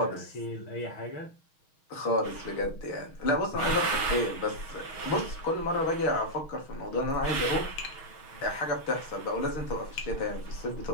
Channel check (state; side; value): late; right; 6.4 ms